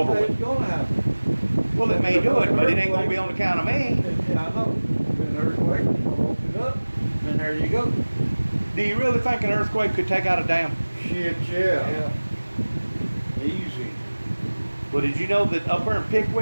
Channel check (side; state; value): both; inverted; correlation -1.00